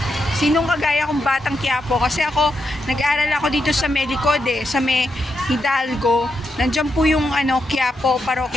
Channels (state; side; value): normal; both; correlation 0.83